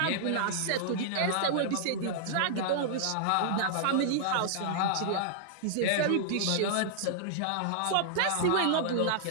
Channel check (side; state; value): both; different; correlation -0.01